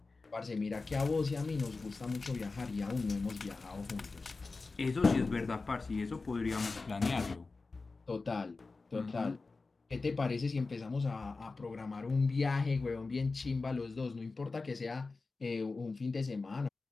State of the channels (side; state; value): right; quieter; 3.9 dB